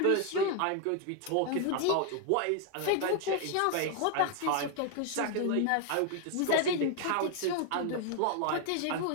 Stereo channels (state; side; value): different; both; correlation 0.01